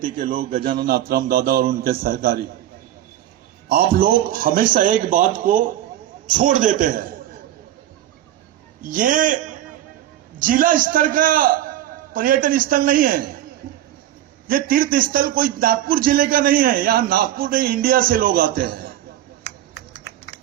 के लोग गजानन आत्राम दादा और उनके सहकारी, आप लोग हमेशा एक बात को छोड़ देते हैं। ये जिला स्तर का पर्यटन स्थल नहीं है, ये तीर्थ स्थल कोई नागपुर जिले का नहीं है। यहां नागपुर नहीं, इंडिया से लोग आते हैं।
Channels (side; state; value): left; quieter; 12.6 dB